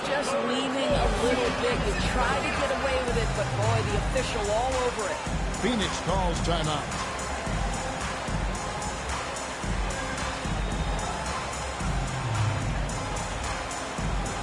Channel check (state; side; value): identical; both; correlation 1.00